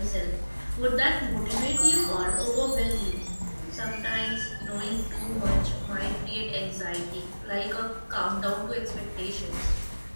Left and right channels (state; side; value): inverted; both; correlation -1.00